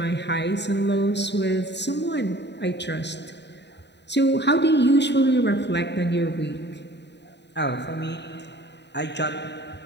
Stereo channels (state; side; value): late; right; 0.50 ms